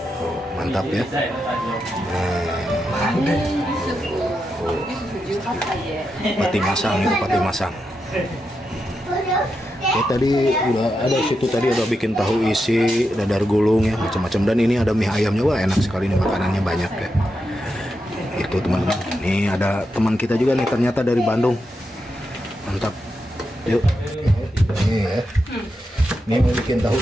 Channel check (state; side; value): normal; both; correlation 0.86